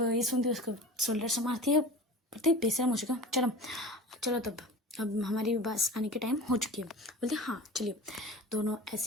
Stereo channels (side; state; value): both; normal; correlation 0.35